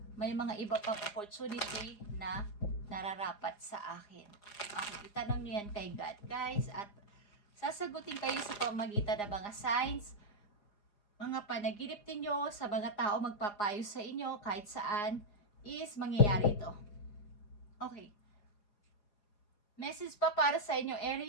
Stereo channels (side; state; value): right; late; 4.9 ms